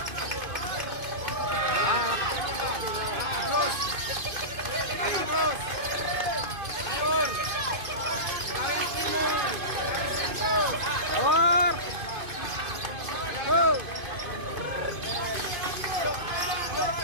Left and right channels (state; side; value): late; left; 2.5 ms